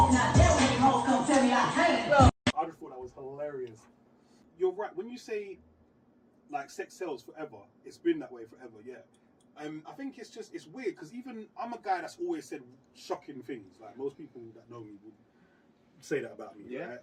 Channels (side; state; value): both; identical; correlation 1.00